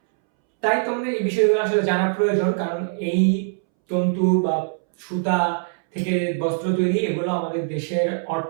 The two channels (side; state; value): left; silent; 64 dB below the other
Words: তাই তোমাদের এই বিষয়গুলো আসলে জানা প্রয়োজন, কারণ এই তন্তু বা সুতা থেকে বস্ত্র তৈরি, এগুলো আমাদের দেশের